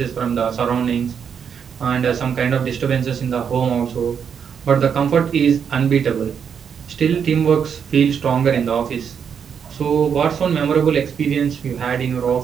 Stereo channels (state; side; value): quieter; left; 7.3 dB